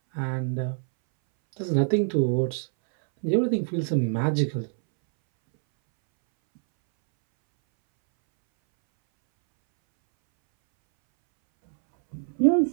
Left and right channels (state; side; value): silent; left; 62 dB below the other